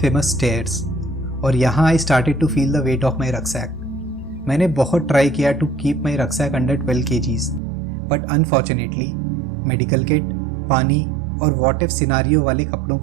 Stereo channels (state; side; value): drops out; left; at 7.6 s